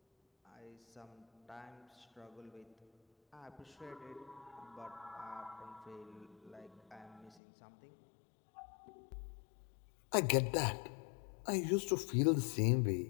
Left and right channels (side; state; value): right; drops out; at 7.4 s